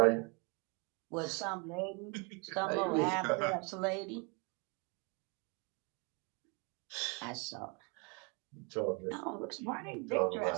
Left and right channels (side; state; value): left; quieter; 32.4 dB